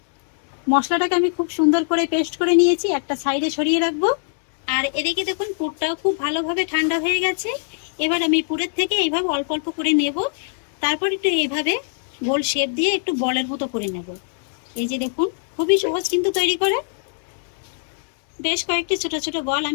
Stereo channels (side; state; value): right; silent; digital silence